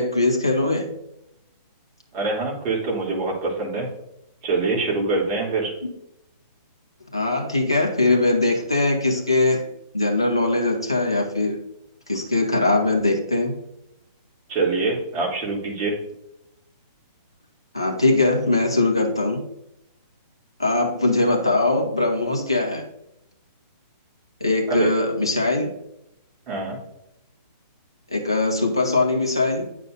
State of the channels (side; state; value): both; inverted; correlation -0.64